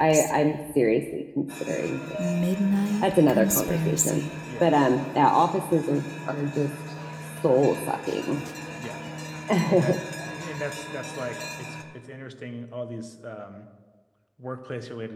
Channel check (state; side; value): identical; both; correlation 1.00